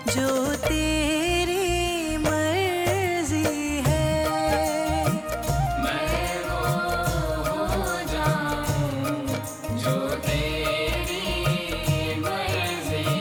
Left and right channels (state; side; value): identical; both; correlation 1.00